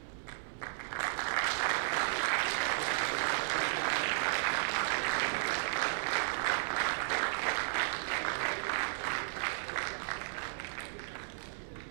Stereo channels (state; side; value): silent; left; 55 dB below the other